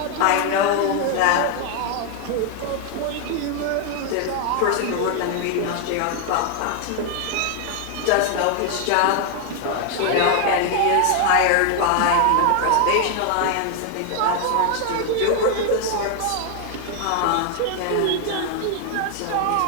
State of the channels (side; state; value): both; different; correlation 0.00